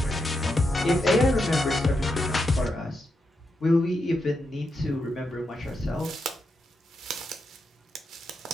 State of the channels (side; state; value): both; normal; correlation 0.84